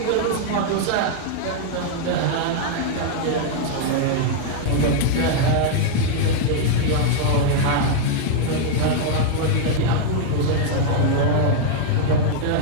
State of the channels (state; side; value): different; both; correlation -0.01